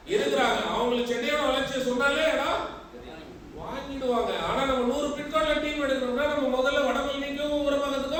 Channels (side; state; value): both; identical; correlation 1.00